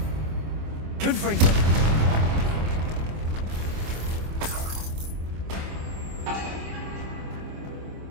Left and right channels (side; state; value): left; late; 25 ms